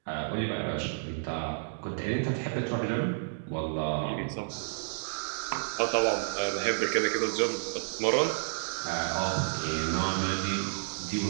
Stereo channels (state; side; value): silent; left; digital silence